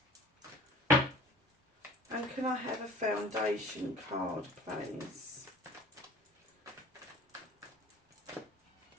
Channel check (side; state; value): both; normal; correlation 0.46